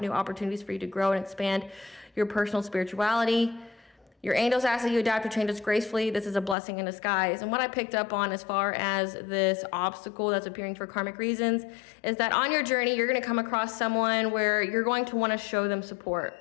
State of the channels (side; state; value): right; drops out; at 6.6 s